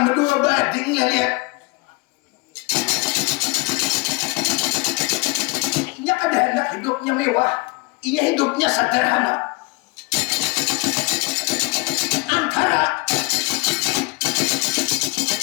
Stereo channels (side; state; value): right; quieter; 26.6 dB